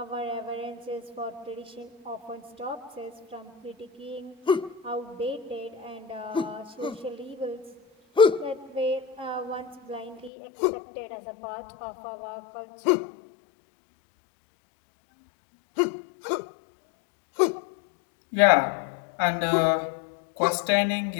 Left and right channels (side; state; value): right; drops out; at 10.3 s